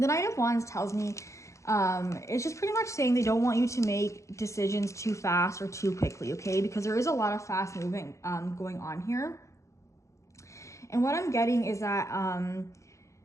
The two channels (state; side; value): late; right; 0.15 ms